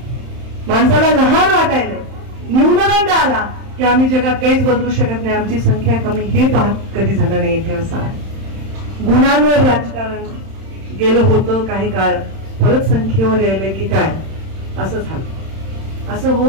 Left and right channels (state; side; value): late; left; 31 ms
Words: माणसाला लहान वाटायला, न्यूनगंड आला की आम्ही जगात काहीच बदलू शकत नाही, आमची संख्या कमी, हे पाहत कधी झालं नाही इथे. असं आहे. गुणांवर राजकारण गेलं होतं काही काळ, परत संख्येवर यायलंय की काय, असं झालं. असं